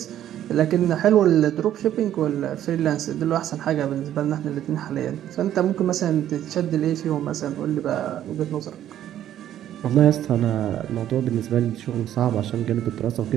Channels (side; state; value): left; quieter; 11.5 dB